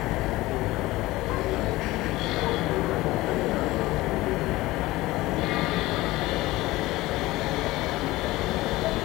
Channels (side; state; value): right; quieter; 18.8 dB